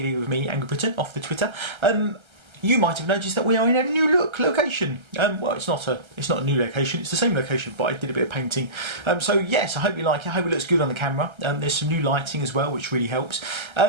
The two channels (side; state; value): left; late; 1.3 ms